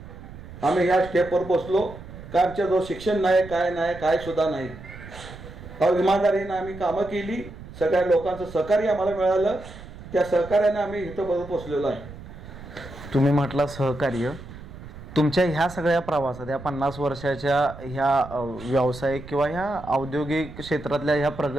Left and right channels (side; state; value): right; noise; rumble, 15 dB below the sound